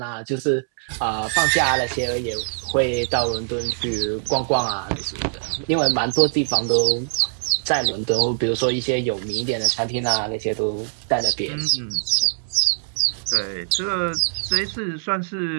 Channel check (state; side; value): silent; left; 64 dB below the other